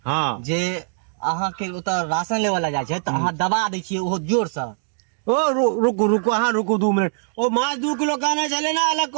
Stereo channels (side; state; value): left; silent; digital silence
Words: हाँ जे अहाँ के ओतऽ राशन लेवल ला जाय छै तो अहाँ दबा दै छियै ओहो जोर से। ओ रुको रुको हाँ रुको 2 मिनट ओ माछ 2 किलो कहने चले ना अलग